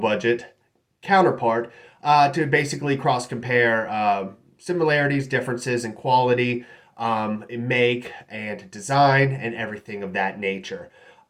counterpart to basically cross compare similarities, differences in quality, in make and design, and everything of that nature.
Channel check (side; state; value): both; identical; correlation 1.00